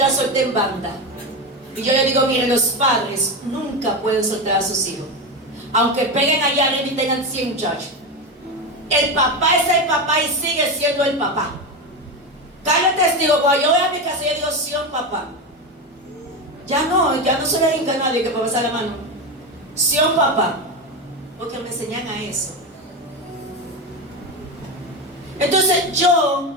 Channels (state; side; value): normal; both; correlation 0.17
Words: solté en banda. Y yo le digo, mire, los padres nunca pueden soltar a sus hijos. Aunque peguen allá arriba y tengan 100 muchachos. El papá es el papá y sigue siendo el papá. Cada testigo, cuando yo voy a mi casa, yo digo, Sion papá. Ya no se le hinca a nadie que pueda pasar la mano. Sion papá. Porque me enseñan a eso. Entonces